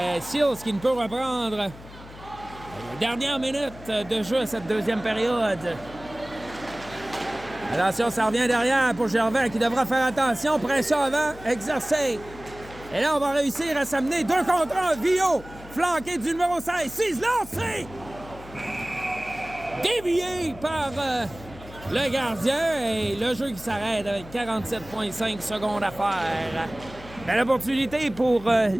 Seals qui ne peut reprendre. Dernière minute de jeu à cette deuxième période. Attention, ça revient derrière pour Gervais qui devra faire attention. Pression avant, exercée. Et là, on va réussir à s'amener 2 contre 1. Vio, flanqué du numéro 16. 6 lancé! Dévié par le gardien. Et le jeu qui s'arrête avec 47,5 secondes à faire. Belle opportunité pour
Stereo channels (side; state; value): left; noise; hum, 17 dB below the sound